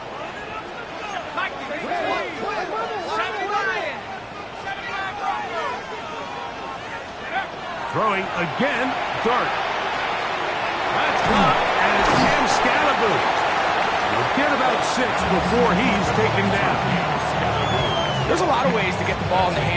Throwing again, Dark. That's caught, and it's Cam Scatterboo. He'll get about 6 before he's taken down. There's a lot of ways to get the ball in the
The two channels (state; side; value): identical; both; correlation 1.00